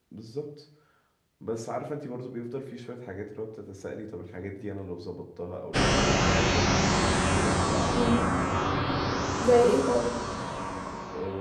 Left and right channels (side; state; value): both; identical; correlation 1.00